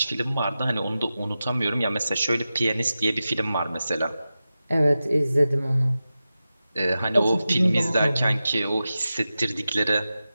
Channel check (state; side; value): inverted; both; correlation -0.93